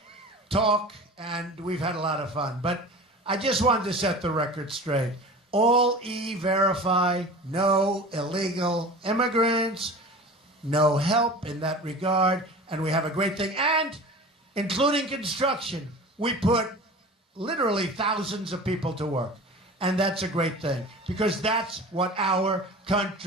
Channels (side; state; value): both; normal; correlation 0.37